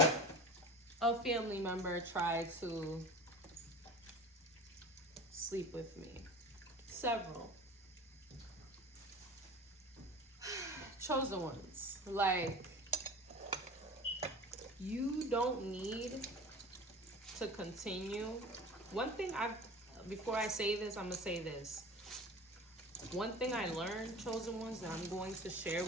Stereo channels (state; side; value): normal; both; correlation 0.36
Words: a family member try to sleep with me. Several. Chosen ones, like, you don't need to continue. One thing before I say this, I'm gonna say this. One thing I learned, chosen ones, that I'm going to share